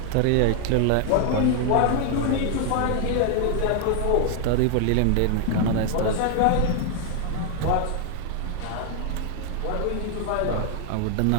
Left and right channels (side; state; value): both; different; correlation 0.00